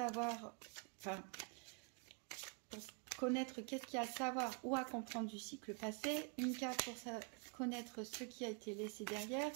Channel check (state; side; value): quieter; left; 36.6 dB